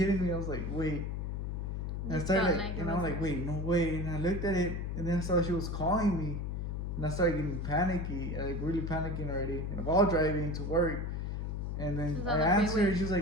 me. I was like, wait. And I started like, and I'm like, wait, no way. And I looked at it, and then I saw she was calling me, and I started getting panicky, like really panicking already. And while driving to work, and then I answered her. She was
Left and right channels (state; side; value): noise; left; hum, 3 dB below the sound